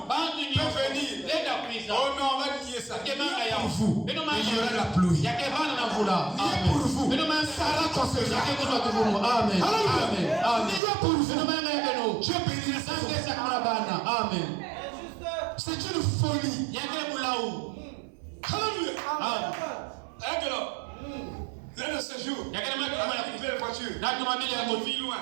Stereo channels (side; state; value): left; drops out; at 10.8 s